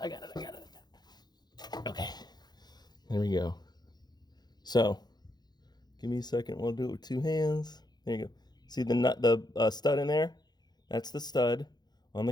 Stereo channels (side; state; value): right; late; 0.20 ms